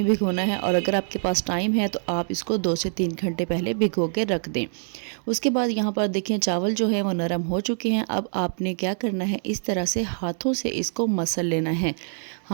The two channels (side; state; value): left; silent; digital silence